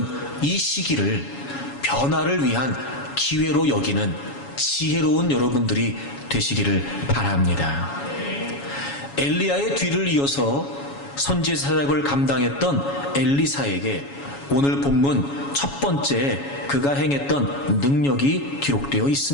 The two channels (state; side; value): late; right; 7.2 ms